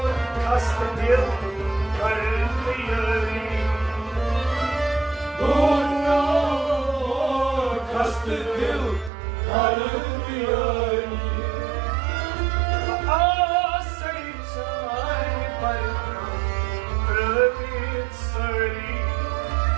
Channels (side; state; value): left; drops out; at 9.1 s